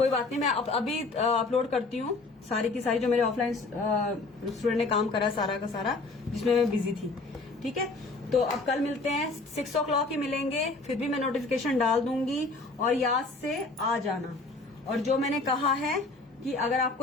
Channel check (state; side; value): quieter; right; 3.5 dB